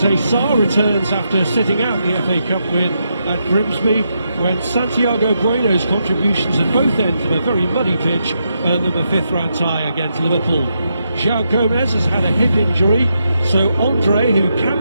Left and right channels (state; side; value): inverted; both; correlation -0.82